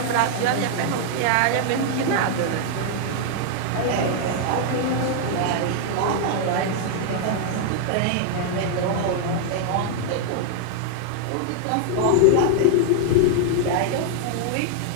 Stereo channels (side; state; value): both; different; correlation 0.00